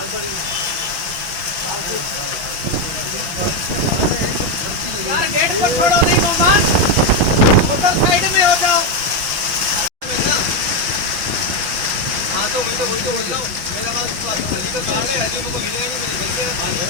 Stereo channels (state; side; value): late; left; 5.9 ms